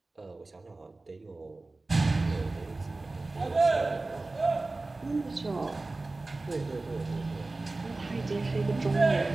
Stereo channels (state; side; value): quieter; left; 3.2 dB